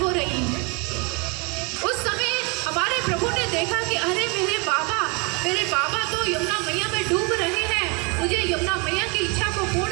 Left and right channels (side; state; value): left; quieter; 31.7 dB